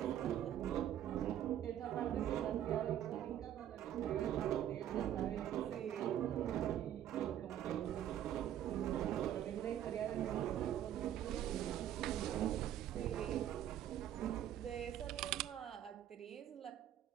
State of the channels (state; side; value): quieter; left; 11.1 dB